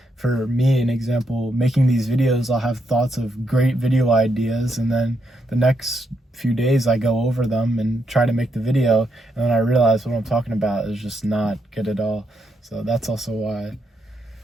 For me, an example, making these videos, I'll have thoughts of great video ideas, and then the next few days I go over them and try to make the video, and then I realize what I'm talking about is just not good at all. So that's also why.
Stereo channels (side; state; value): both; normal; correlation 0.79